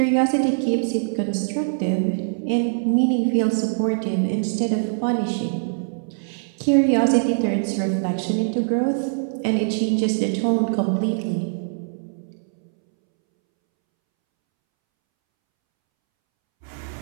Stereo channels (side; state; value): left; silent; 64 dB below the other